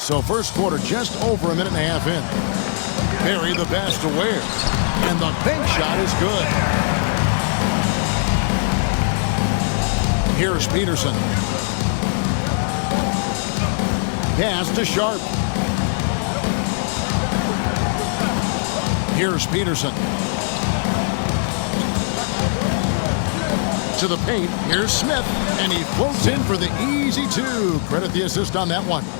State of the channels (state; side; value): silent; right; digital silence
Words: first quarter just over a minute and a half in. Berry the pass to Ware. And the bank shot is good. Here's Peterson. Pass to Sharp. Here's Peterson. To the paint. Here's Smith. And he floats in for the easy two. Credit the assist on that one.